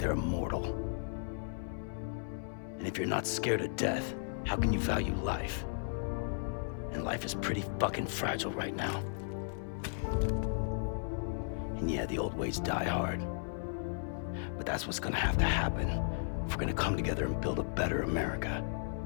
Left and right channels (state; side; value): silent; right; 54 dB below the other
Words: immortal. And if you're not scared of death, how can you value life? And life is pretty fucking fragile right now. And yeah, the old ways die hard. But that's what's gonna have to happen if we're gonna come together and build a better America.